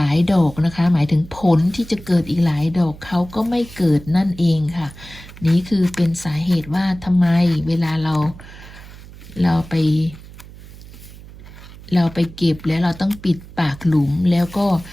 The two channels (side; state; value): right; noise; hum, 18 dB below the sound